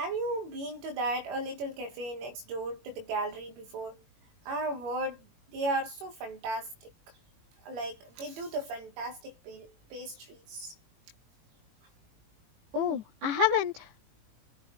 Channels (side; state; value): left; late; 18 ms